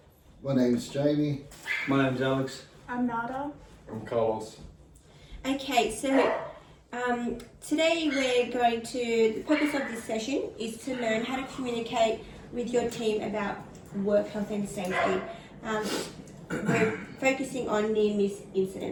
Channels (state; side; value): identical; both; correlation 1.00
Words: My name's Jamie. My name's Alex. I'm Nada. I'm Carlos. Okay, so today we're going to, the purpose of this session is to learn how to communicate with your team about work health and safety. We're focusing on near-miss